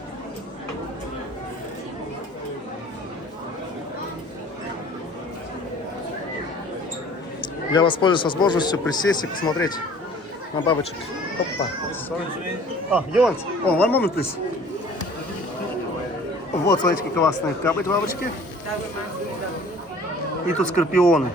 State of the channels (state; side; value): normal; both; correlation 0.50